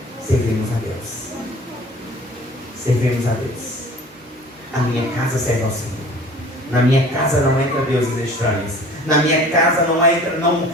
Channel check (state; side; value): normal; both; correlation 0.46